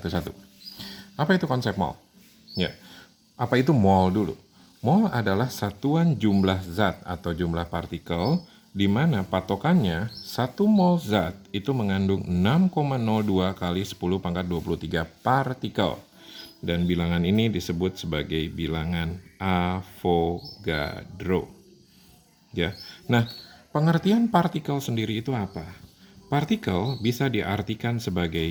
Apa itu konsep mol? Ya, apa itu mol dulu? Mol adalah satuan jumlah zat atau jumlah partikel di mana patokannya 1 mol zat itu mengandung 6,02 kali 10 pangkat 23 partikel. Dan bilangan ini disebut sebagai bilangan Avogadro. Ya. Nah, pengertian partikel sendiri itu apa? Partikel bisa diartikan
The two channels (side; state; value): both; identical; correlation 1.00